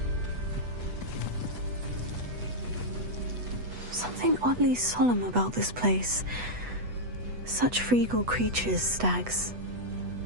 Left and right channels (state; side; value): late; left; 8.1 ms